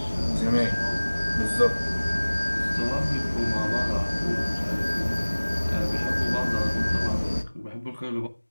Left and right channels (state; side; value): inverted; both; correlation -1.00